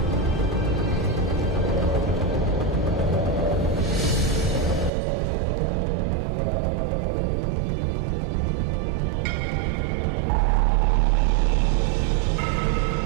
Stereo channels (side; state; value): left; drops out; at 4.9 s